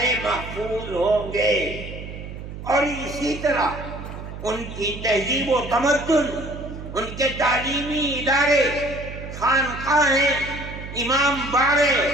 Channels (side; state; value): right; noise; hum, 10 dB below the sound